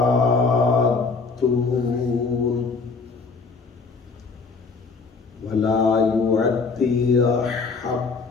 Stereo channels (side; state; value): right; quieter; 4.5 dB